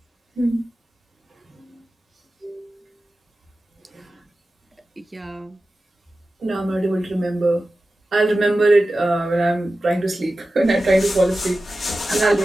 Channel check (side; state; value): both; normal; correlation 0.94